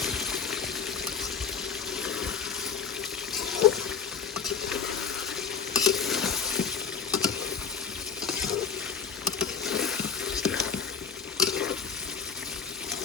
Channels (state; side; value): quieter; right; 6.4 dB